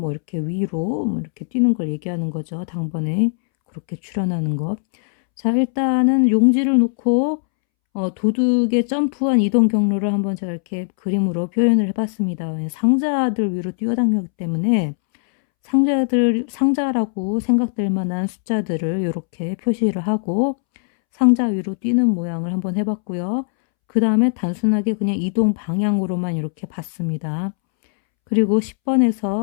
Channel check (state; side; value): silent; right; 66 dB below the other